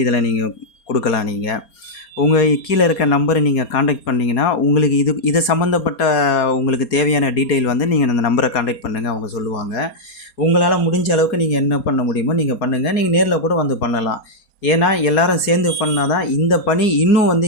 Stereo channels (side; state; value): right; late; 4.3 ms